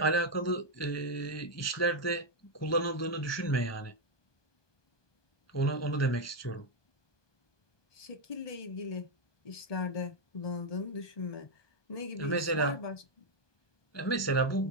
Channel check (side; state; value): right; late; 1.2 ms